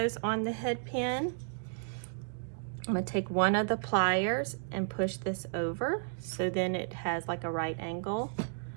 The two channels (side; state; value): left; silent; digital silence